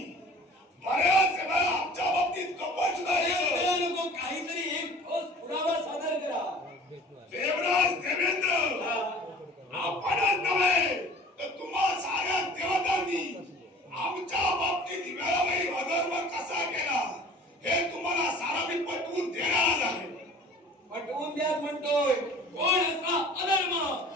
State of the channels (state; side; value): normal; both; correlation 0.46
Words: बऱ्याच वेळा आमच्या बाबतीत कपट सुद्धा नको, काहीतरी एक ठोस पुरावा सादर करा. देवराज देवेंद्र आपणच नव्हे तर तुम्हा साऱ्या देवतांनी आमच्या बाबतीत वेळोवेळी अधर्म कसा केला हे तुम्हाला सारा मी पटवून देणार आहे. पटवून द्या म्हणतोय. कोण असा अधर्म